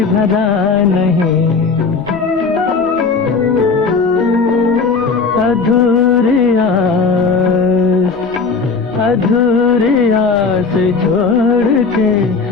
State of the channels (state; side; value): quieter; right; 4.6 dB